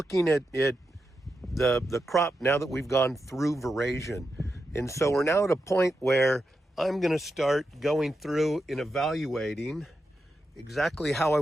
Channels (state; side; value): normal; both; correlation 0.87